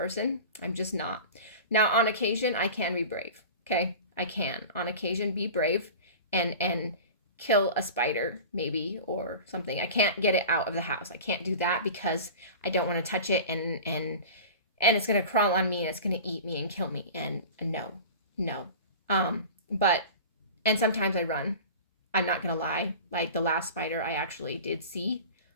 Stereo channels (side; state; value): both; inverted; correlation -0.36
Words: I'm just not. Now, on occasion, I can be brave. Okay, I can on occasion be brave and kill a spider maybe or something. I can't get it out of the house. I can't do that because I don't want to touch it and it's gonna crawl on me and it's gonna eat me and kill me. And no. But and sometimes I run. I'm not gonna lie. Like the last spider I actually did see,